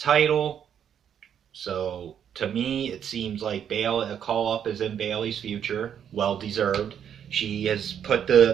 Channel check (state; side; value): quieter; left; 8.8 dB